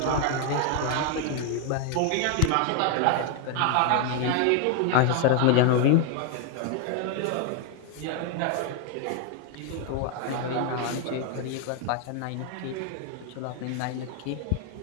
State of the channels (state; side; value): different; both; correlation 0.00